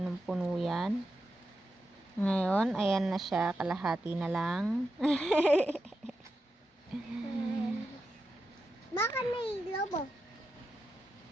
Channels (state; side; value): normal; both; correlation 0.88